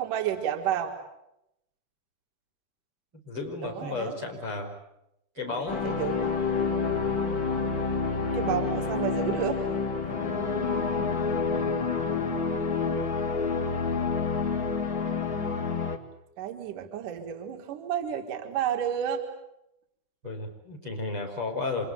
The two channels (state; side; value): late; left; 10 ms